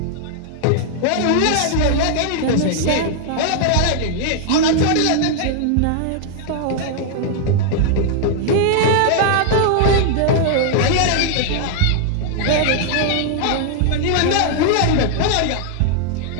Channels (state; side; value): different; both; correlation 0.00